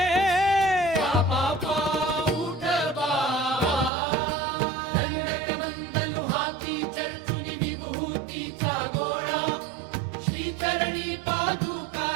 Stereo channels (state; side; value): drops out; left; at 3.9 s